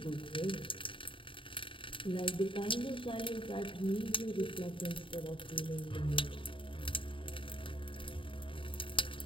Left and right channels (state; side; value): late; right; 0.25 ms